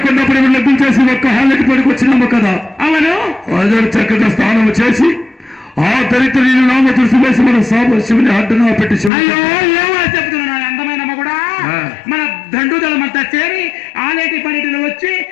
లగ్నం చేసి ఒక్క హాలకి పడికొచ్చినాము కదా. అవును, అదే చక్కగా స్నానం చేసి ఆ దరిద్రుని నామ దృష్టి వేసి మన శివుని అడ్డున పెట్టి చెప్తున్నాను అందమైన కూడా మన దండుదలం అంతా చేరి ఆలేటి పనిటిలో వచ్చి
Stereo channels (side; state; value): right; drops out; at 9.1 s